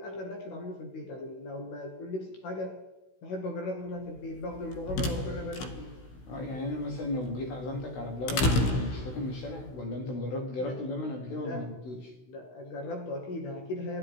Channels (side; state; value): right; late; 16 ms